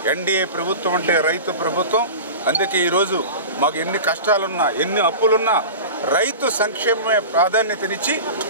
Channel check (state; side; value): inverted; both; correlation -0.32